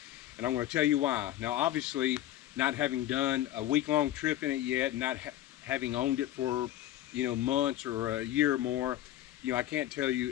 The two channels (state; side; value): quieter; right; 13.2 dB